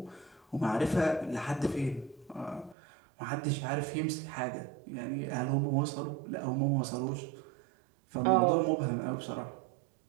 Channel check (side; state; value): left; drops out; at 2.8 s